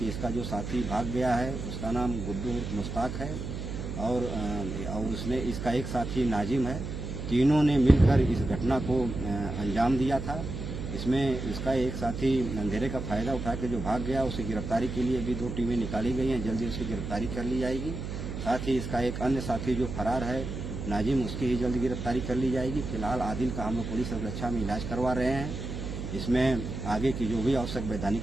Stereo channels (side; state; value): right; noise; hum, 6 dB below the sound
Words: इसका जो साथी भाग गया है उसका नाम गुड्डू मुश्ताक है और उसने इसका एक साथी नाजिम है। तीनों ने मिलकर इस घटना को अंजाम दिया था। इसमें इसका एक साथी अंधेरे का फायदा उठा के जो भाग गया, उसे गिरफ्तारी के लिए भी 2 टीमें निकाली गई हैं। जल्दी उसकी गिरफ्तारी कर ली जाएगी। साथ ही इसका एक अन्य साथी जो फरार है नाजिम, उसकी ही जल्द गिरफ्तारी कर ली जाएगी। फिलहाल आदिल का हम लोग पुलिस सुरक्षा में इलाज करवा रहे हैं। इसमें आगे की जो भी आवश्यक